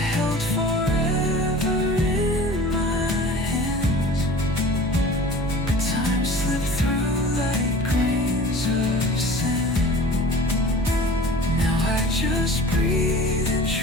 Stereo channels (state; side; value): noise; right; hum, 10 dB below the sound